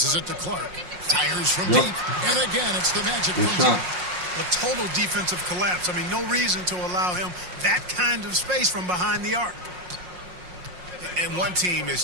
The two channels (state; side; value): late; left; 5.5 ms